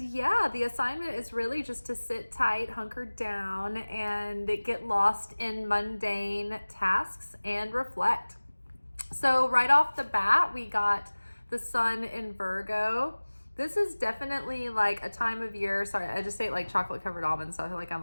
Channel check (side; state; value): both; inverted; correlation -1.00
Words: the assignment is really just to sit tight, hunker down, and get lost in mundane tasks and reflect. So right off the bat, we got the sun in Virgo. This is definitely like a time of year. Sorry, I just ate like chocolate covered almonds, so I feel like I'm